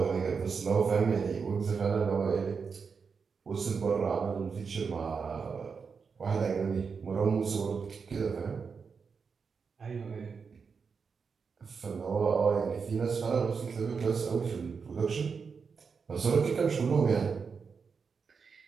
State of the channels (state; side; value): quieter; left; 5.6 dB